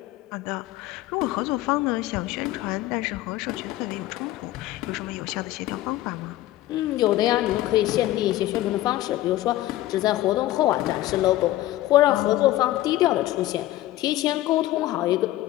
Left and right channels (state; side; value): quieter; right; 15.4 dB